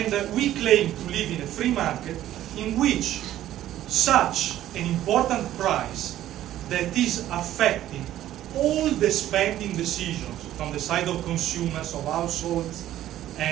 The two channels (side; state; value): left; quieter; 13.0 dB